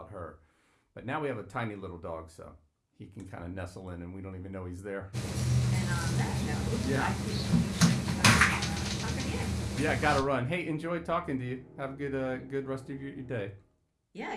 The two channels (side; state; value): both; identical; correlation 1.00